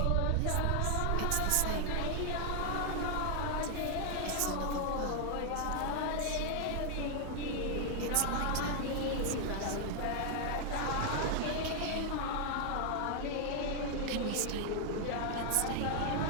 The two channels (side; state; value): both; different; correlation 0.00